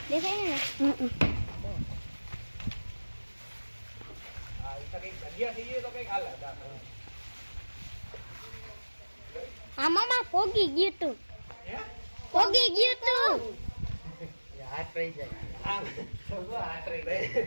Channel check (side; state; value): both; inverted; correlation -1.00